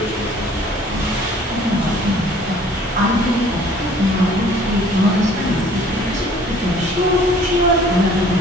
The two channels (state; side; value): normal; both; correlation 0.54